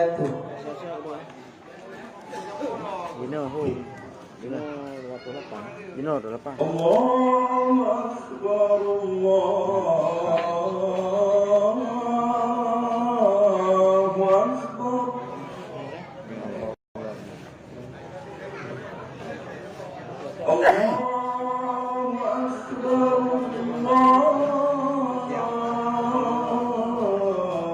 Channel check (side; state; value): both; identical; correlation 1.00